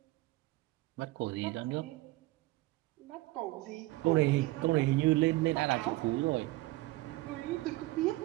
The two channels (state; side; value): quieter; left; 19.6 dB